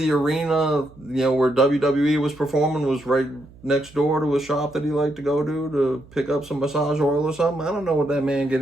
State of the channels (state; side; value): noise; right; hum, 23 dB below the sound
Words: arena, where WWE was performing was right next door to a shop that he liked to go to pick up some massage oil or something. I don't know what that man